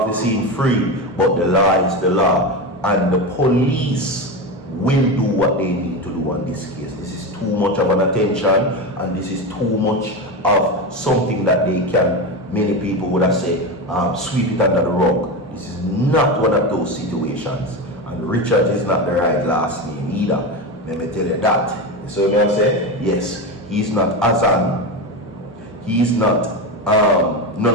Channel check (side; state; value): both; normal; correlation 0.19